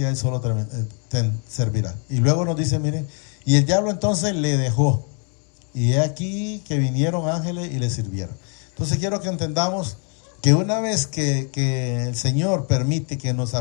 a él solo te servirá. Y luego nos dice, miren, y el diablo entonces le dejó. Y he aquí que vinieron ángeles y le sirvieron. Entonces quiero que entendamos que una vez que el Señor permite que nos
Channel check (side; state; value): right; quieter; 39.9 dB